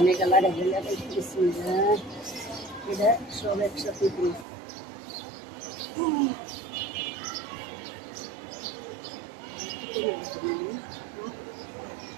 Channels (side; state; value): left; drops out; at 4.5 s